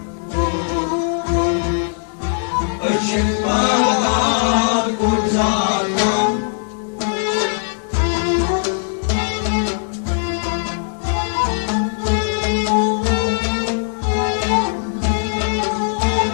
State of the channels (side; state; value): right; silent; 64 dB below the other